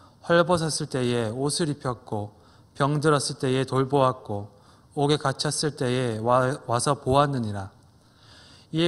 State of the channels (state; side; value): identical; both; correlation 1.00